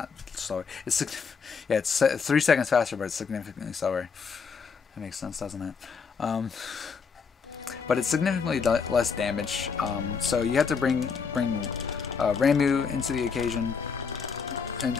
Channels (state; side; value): quieter; right; 5.7 dB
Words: slower. Yeah, it's 3 seconds faster, but it's significantly slower. That makes sense, doesn't it? But it's significantly less damage. So you have to bring Ramuh into the occasion and